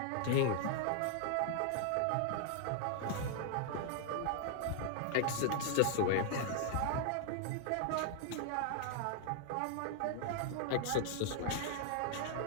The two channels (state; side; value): different; both; correlation -0.01